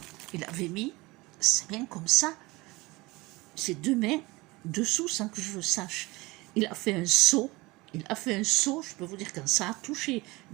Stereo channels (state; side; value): quieter; left; 22.4 dB